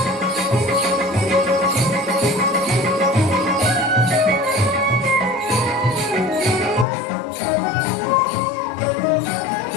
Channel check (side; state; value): right; drops out; at 6.9 s